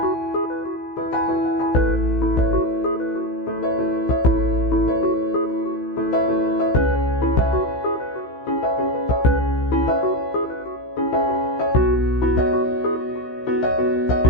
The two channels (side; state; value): right; late; 16 ms